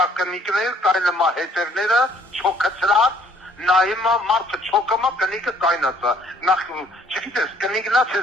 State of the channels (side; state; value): both; normal; correlation 0.61